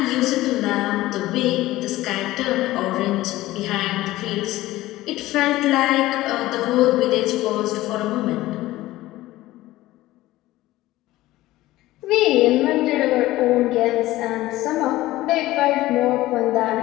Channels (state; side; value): quieter; right; 16.8 dB